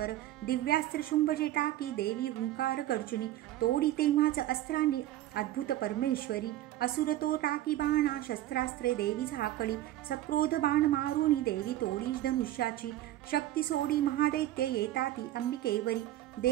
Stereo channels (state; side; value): quieter; left; 14.2 dB